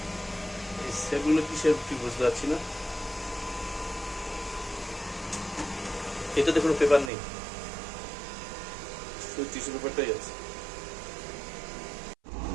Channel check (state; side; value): drops out; left; at 7.1 s